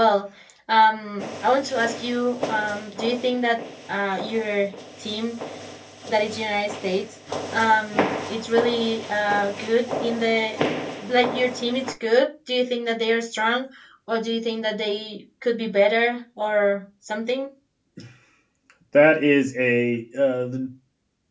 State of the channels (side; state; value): both; identical; correlation 1.00